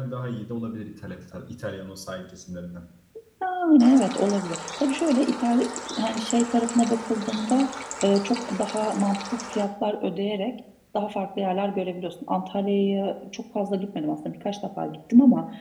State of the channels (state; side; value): identical; both; correlation 1.00